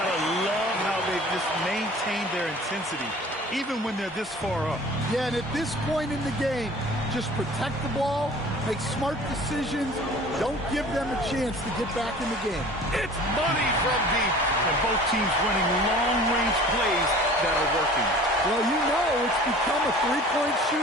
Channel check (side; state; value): both; normal; correlation 0.45